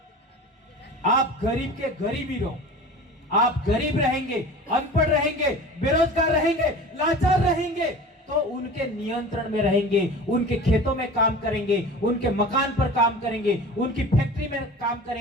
आप गरीब के गरीब ही रहो। आप गरीब रहेंगे, अनपढ़ रहेंगे, बेरोजगार रहेंगे, लाचार रहेंगे, तो उनके नियंत्रण में रहेंगे, उनके खेतों में काम करेंगे, उनके मकान पर काम करेंगे, उनकी फैक्ट्री में काम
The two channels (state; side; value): normal; both; correlation 0.37